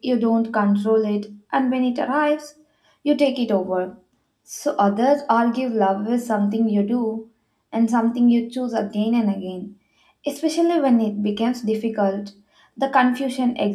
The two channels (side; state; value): both; identical; correlation 1.00